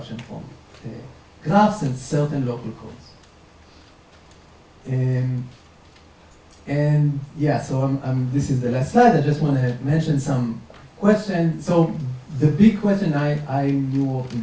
from graphs and certain local codes. And yeah, so this is the last slide. I just want to mention some questions. So the big question I knew in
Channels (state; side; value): identical; both; correlation 1.00